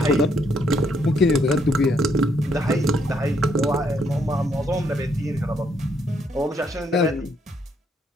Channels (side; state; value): both; normal; correlation 0.72